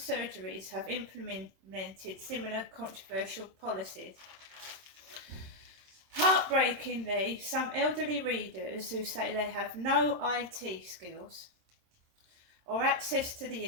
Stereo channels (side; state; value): left; late; 26 ms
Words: have implemented similar controversial policies. Heartbreakingly, some elderly readers who say they have no IT skills or access to the